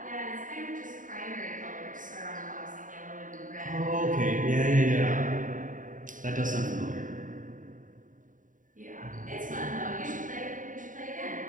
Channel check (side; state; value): left; late; 0.38 ms